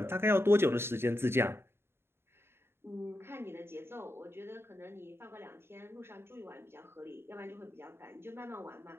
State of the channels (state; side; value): late; left; 0.12 ms